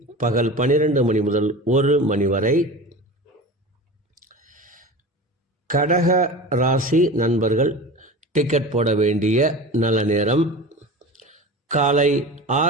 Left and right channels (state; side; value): normal; both; correlation 0.32